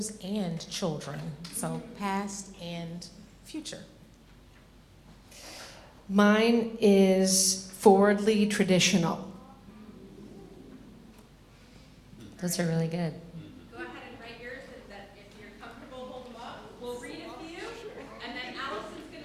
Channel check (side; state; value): both; identical; correlation 1.00